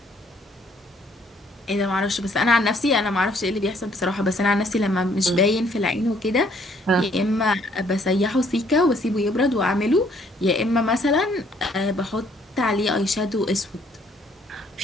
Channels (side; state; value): both; normal; correlation 0.64